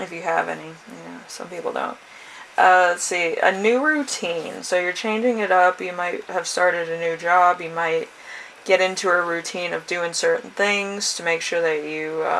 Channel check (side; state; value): both; identical; correlation 1.00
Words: you have any. Some people don't. Let's see. A new routine. So you're changing it up. You might have started a new job. You might get into a routine of doing certain things to make sure that you